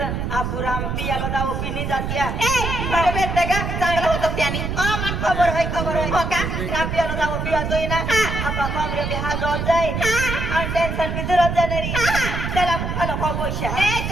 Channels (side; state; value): right; noise; rumble, 3 dB below the sound